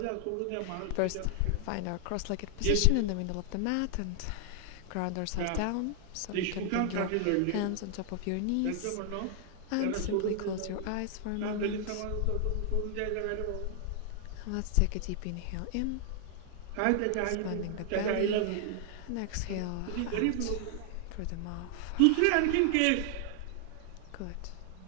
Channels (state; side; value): different; both; correlation 0.00